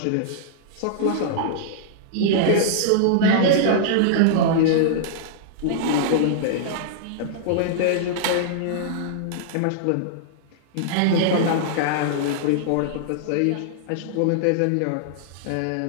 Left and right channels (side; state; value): both; different; correlation -0.01